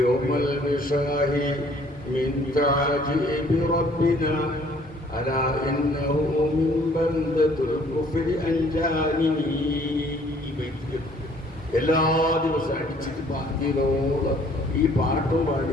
من تعجيب ربنا ألا إنه من بلدة الكفر أنجاني. എല്ലാ ദിവസവും അടിച്ചിട്ട് പാട്ടിയോളം ഈ പാട്ടും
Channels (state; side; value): normal; both; correlation 0.59